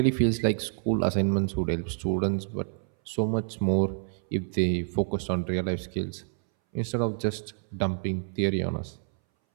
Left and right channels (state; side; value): silent; left; 59 dB below the other